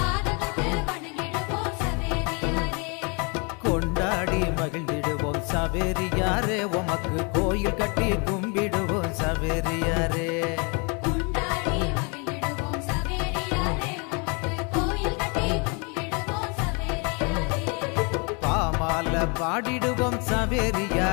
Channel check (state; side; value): quieter; right; 33.1 dB